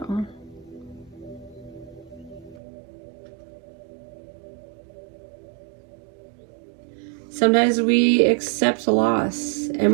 Sometimes we accept loss and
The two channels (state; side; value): drops out; left; at 2.6 s